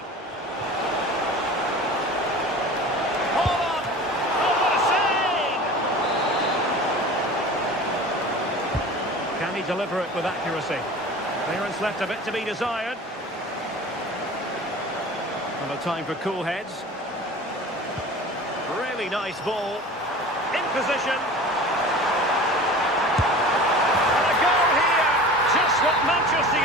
they deliver it with accuracy. Clearance left a bit to be desired. And a time for cool heads. Really nice ball. In position. And a goal here. Just what Manchester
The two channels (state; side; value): normal; both; correlation 0.38